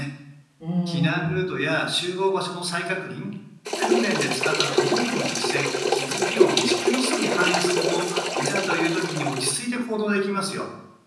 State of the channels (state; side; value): identical; both; correlation 1.00